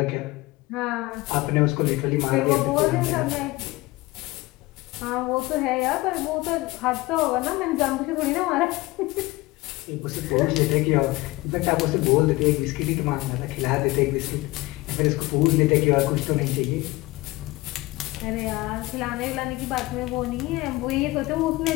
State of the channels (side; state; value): right; quieter; 20.7 dB